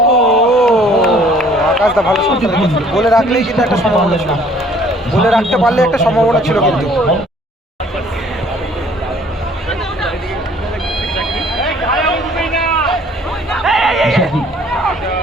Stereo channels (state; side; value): normal; both; correlation 0.57